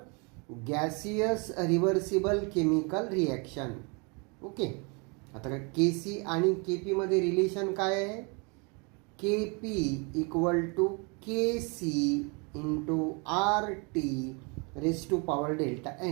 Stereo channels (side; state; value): left; quieter; 32.4 dB